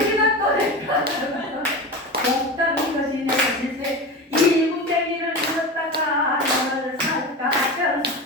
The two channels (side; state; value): both; normal; correlation 0.26